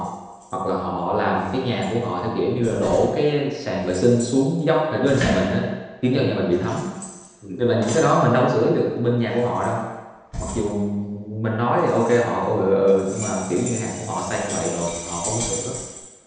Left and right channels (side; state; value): both; identical; correlation 1.00